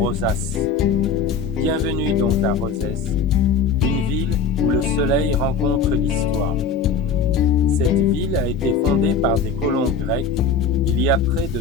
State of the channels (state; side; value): quieter; right; 5.2 dB